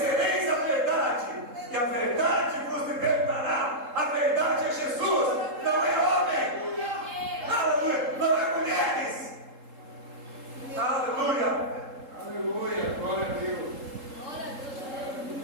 a verdade, e a verdade vos libertará. A verdade é Jesus, não é homem. Aleluia. Não é mulheres. Aleluia. Aleluia, glória a Deus.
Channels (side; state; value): left; late; 3.7 ms